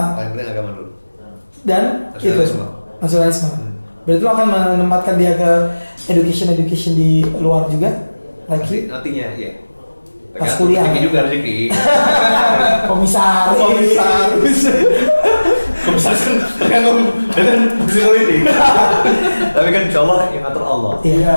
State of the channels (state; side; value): inverted; both; correlation -1.00